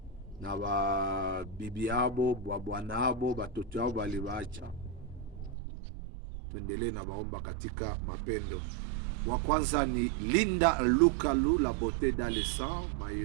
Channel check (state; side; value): drops out; left; at 5.6 s